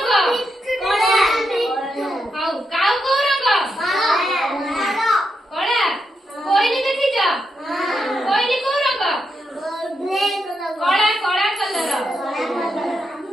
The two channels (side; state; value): both; normal; correlation 0.83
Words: ହଉ କାଉ କୋଉ ରଙ୍ଗ କଳା କୋଇଲି ଦେଖିଛ କୋଇଲି କୋଉ ରଙ୍ଗ କଳା କଳା କଲର